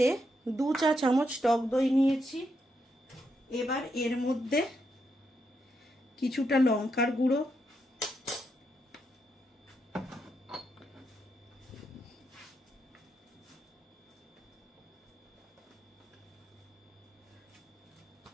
2 চা চামচ টক দই নিয়েছি। এবার এর মধ্যে কিছুটা লঙ্কার গুঁড়ো,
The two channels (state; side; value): normal; both; correlation 0.81